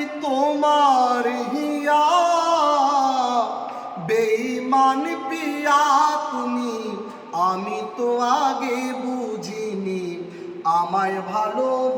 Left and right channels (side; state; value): both; identical; correlation 1.00